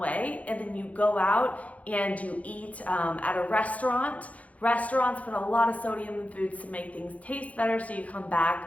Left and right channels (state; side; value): late; right; 0.068 ms